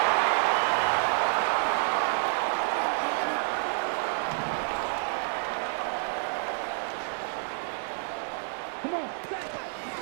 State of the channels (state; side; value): silent; left; 59 dB below the other